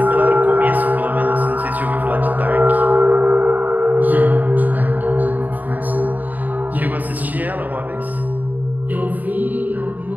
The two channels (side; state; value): left; late; 0.082 ms